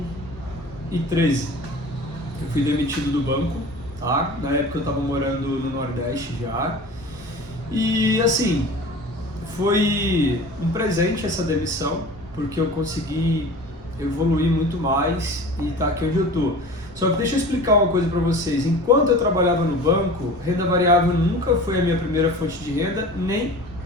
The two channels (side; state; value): both; normal; correlation 0.38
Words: Eu fui demitido do banco, tá? Na época eu estava morando no Nordeste já. E assim, foi um presente essa demissão, porque eu consegui evoluir muito mais e tá aqui onde eu tô. Só que deixa eu explicar uma coisa para vocês. Enquanto eu trabalhava no banco, renda variável nunca foi a minha primeira fonte de renda, nem